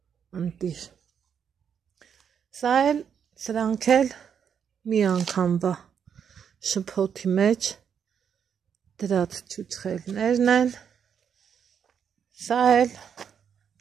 ընտիր։ Սա էլ սրանք էլ մի անգամվա շփոթի մեջ դրած չուչխելներն են, սա էլ,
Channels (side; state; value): left; quieter; 7.7 dB